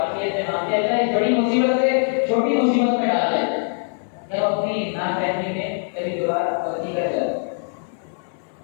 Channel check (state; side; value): silent; right; digital silence